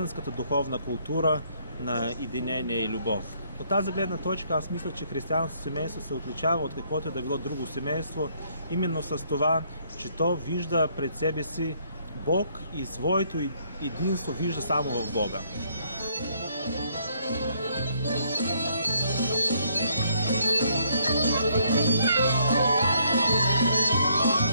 духовна култура на единение и любов. От тази гледна точка аз мисля, че християнското семейство се отличава от каквото да било друго семейство, именно с това, че то вижда пред себе си Бог и своето единство вижда само в Бога.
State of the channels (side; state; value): both; inverted; correlation -0.69